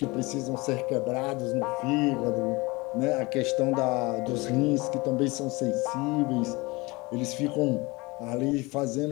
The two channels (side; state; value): right; quieter; 24.1 dB